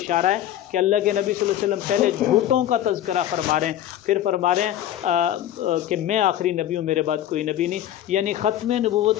ہے کہ اللہ کے نبی صلی اللہ علیہ وسلم پہلے جھوٹوں کا تذکرہ فرما رہے ہیں، پھر فرما رہے ہیں کہ میں آخری نبی ہوں، میرے بعد کوئی نبی نہیں، یعنی ختم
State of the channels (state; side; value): quieter; right; 12.1 dB